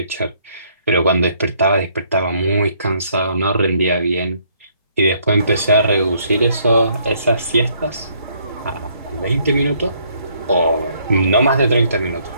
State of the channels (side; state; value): both; inverted; correlation -0.67